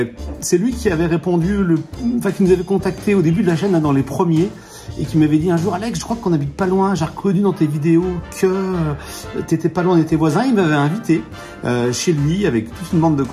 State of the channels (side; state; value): both; identical; correlation 1.00